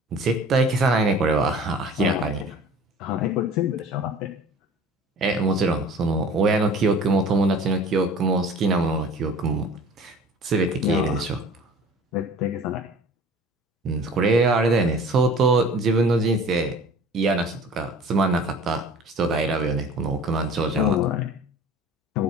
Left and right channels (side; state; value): both; normal; correlation 0.45